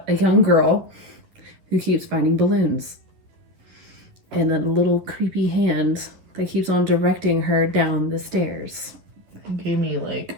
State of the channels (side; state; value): left; late; 11 ms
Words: a young girl who keeps finding balloons. And a little creepy hand that keeps on directing her down the stairs. It gave me, like,